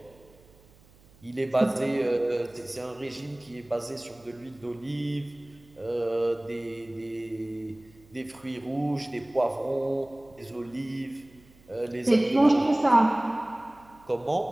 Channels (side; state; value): right; noise; hum, 27 dB below the sound